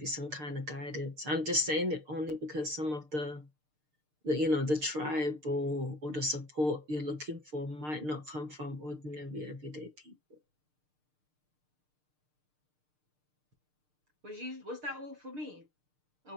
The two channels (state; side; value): late; left; 6.6 ms